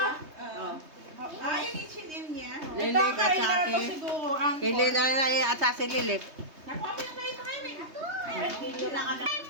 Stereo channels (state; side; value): late; left; 3.2 ms